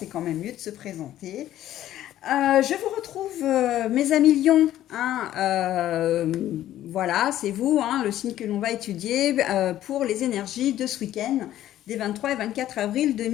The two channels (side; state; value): right; quieter; 12.9 dB